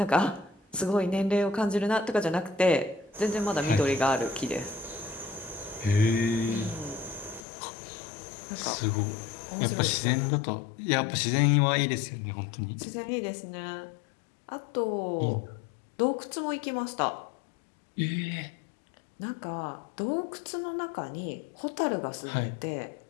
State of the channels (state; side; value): drops out; right; at 7.5 s